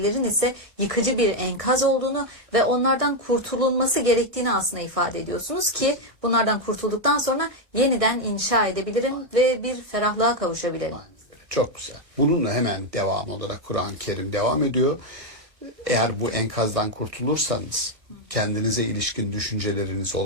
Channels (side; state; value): left; late; 1.5 ms